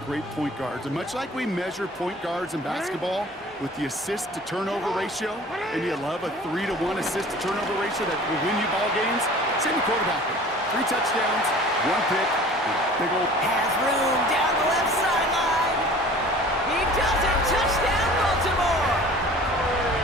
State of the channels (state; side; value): normal; both; correlation 0.45